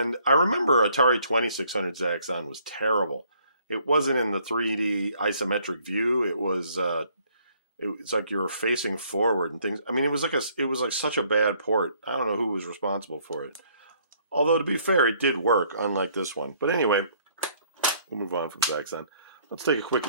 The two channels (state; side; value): inverted; both; correlation -0.64